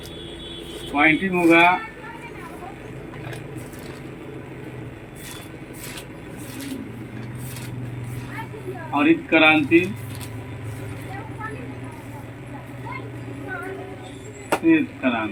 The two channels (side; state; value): both; identical; correlation 1.00